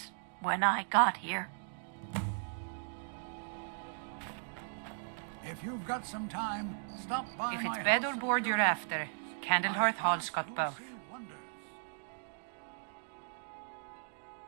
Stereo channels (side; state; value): left; silent; digital silence